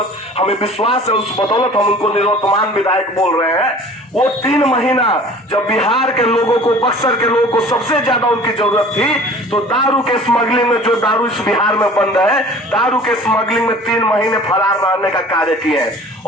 हमें विश्वास है, उस बदौलत हम उनको निर्वर्तमान विधायक बोल रहे हैं। वो 3 महीना जब बिहार के लोगों को, बक्सर के लोगों को सबसे ज्यादा उनकी जरूरत थी, तो दारू के स्मगलिंग में, जो दारू इस बिहार में बंद है, दारू के स्मगलिंग में 3 महीने फरार रहने का कार्य किए हैं।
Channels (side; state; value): both; normal; correlation 0.45